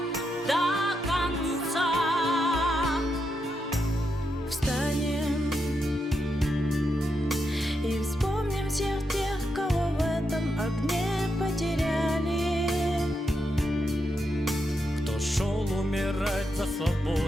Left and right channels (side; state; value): both; normal; correlation 0.83